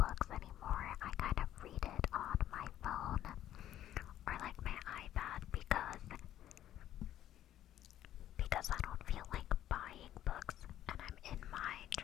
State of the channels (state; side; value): quieter; right; 12.0 dB